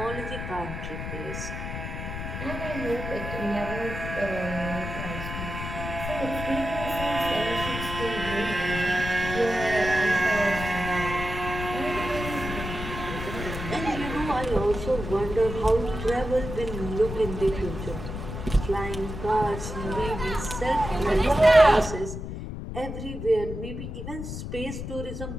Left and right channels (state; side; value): noise; left; rumble, 6 dB below the sound